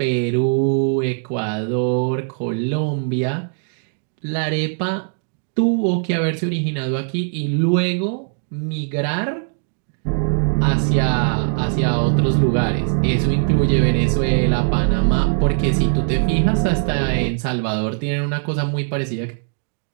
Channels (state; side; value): silent; left; digital silence